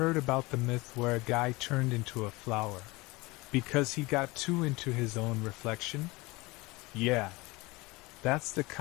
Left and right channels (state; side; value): quieter; right; 23.0 dB